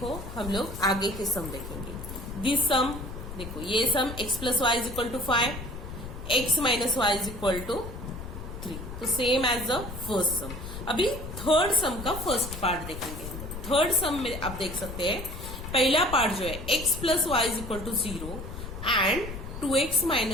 हम लोग आगे के सम देखेंगे। दिस सम देखो, ये sum x plus Y is equal to 5, x minus Y is equal to 3, तो same as the first sum. अभी थर्ड सम का फर्स्ट पार्ट देखेंगे। थर्ड सम में आप देख सकते हैं पहला पार्ट जो है x plus Y is equal to 0 and 2x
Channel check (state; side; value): noise; left; rumble, 9 dB below the sound